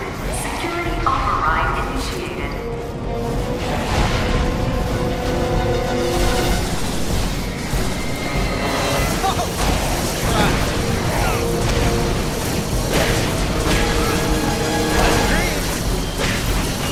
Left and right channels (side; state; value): both; identical; correlation 1.00